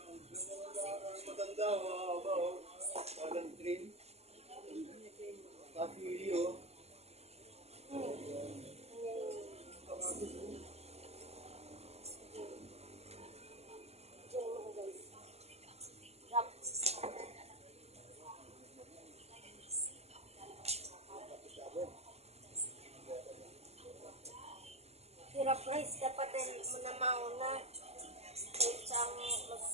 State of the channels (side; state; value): left; late; 0.30 ms